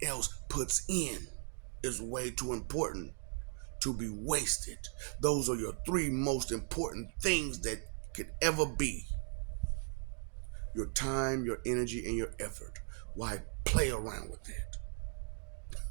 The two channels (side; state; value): left; silent; 53 dB below the other